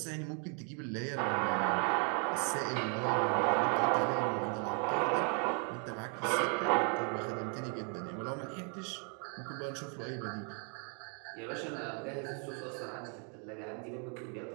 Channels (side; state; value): left; quieter; 39.6 dB